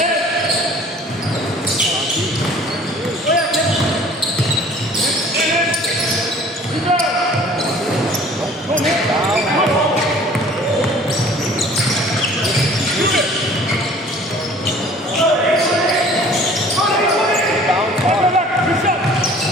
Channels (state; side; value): normal; both; correlation 0.50